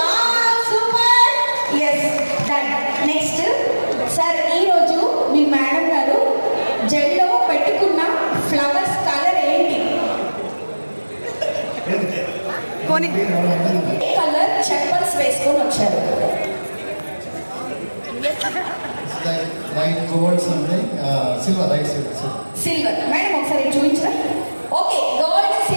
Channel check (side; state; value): both; inverted; correlation -1.00